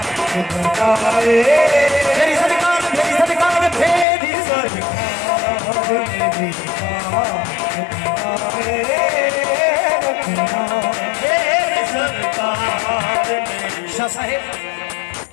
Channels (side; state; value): right; drops out; at 4.0 s